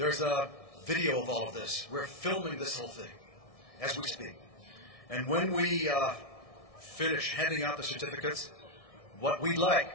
a video of all of this. We're filming this whole thing as we speak. And when we finish handing out the certificates, what we'd like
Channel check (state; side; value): late; right; 1.6 ms